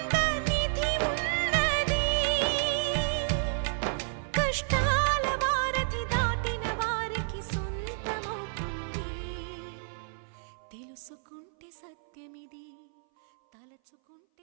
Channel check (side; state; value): left; silent; 57 dB below the other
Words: నిధి ఉన్నది కష్టాల వారధి దాటిన వారికి సొంతమవుతుంది తెలుసుకుంటే సత్యమిది